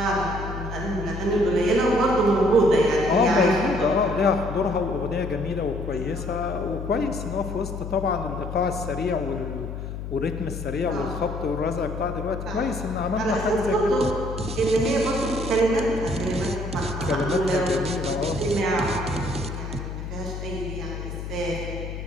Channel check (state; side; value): noise; left; hum, 7 dB below the sound